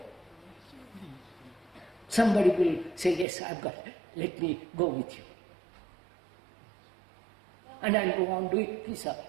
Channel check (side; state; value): left; drops out; at 3.2 s